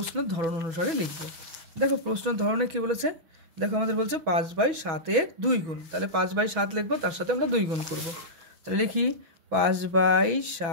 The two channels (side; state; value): left; late; 6.1 ms